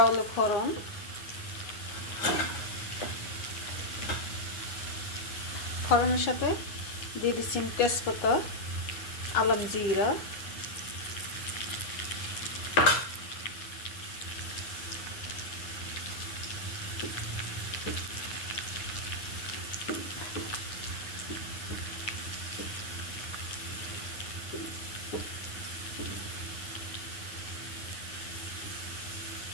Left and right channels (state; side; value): late; right; 9.5 ms